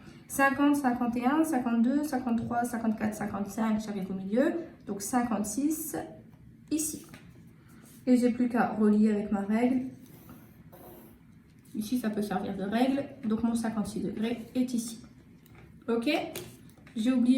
50, 51, 52, 53, 54, 55. J'arrive au milieu. Donc 56 ici. Et j'ai plus qu'à relier avec ma règle. Ici, ça peut servir de règle. Donc mon 56 degrés est ici. Ok? J'ai oublié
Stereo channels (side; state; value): both; identical; correlation 1.00